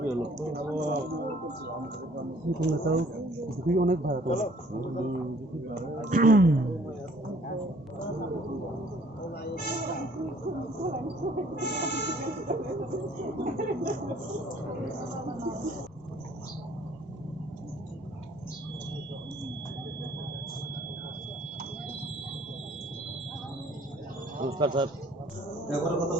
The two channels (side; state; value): both; normal; correlation 0.58